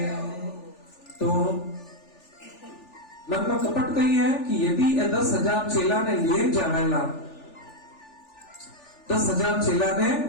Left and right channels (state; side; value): late; right; 3.4 ms